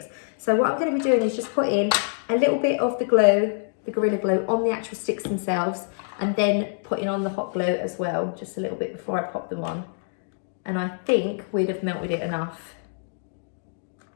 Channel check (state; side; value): silent; right; digital silence